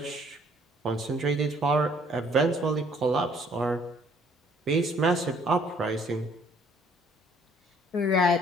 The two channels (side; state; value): both; normal; correlation 0.61